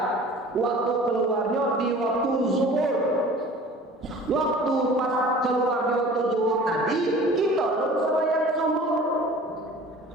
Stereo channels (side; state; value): both; normal; correlation 0.44